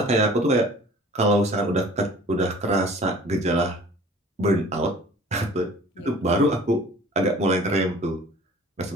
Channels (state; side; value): normal; both; correlation 0.47